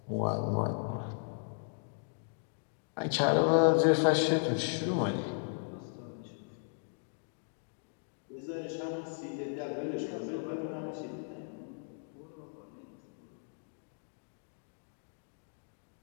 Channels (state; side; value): silent; right; digital silence